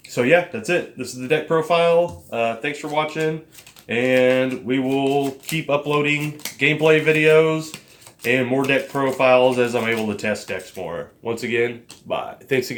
So yeah, that's it. This is the deck profile. Thanks for watching. And we will keep uploading gameplay videos and more deck profiles as I'm able to test decks more. Once again, bye. Thanks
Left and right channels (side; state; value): both; identical; correlation 1.00